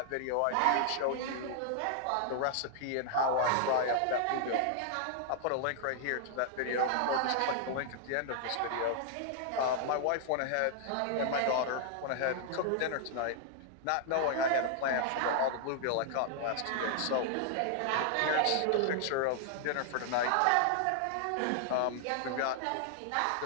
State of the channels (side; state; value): both; different; correlation 0.00